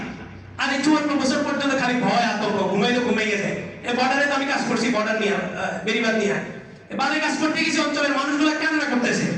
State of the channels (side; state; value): both; identical; correlation 1.00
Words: আর এই 54 বছর পর্যন্ত খালি ভয় আতঙ্ক, ঘুমাইলে ঘুমাইয়ে যায়। এই বর্ডারে তো আমি কাজ করছি, বর্ডার নিয়ে বেরিবাদ নিয়ে বারে কাজ করতে গেছি, অঞ্চলের মানুষগুলো কান্না করতেছে,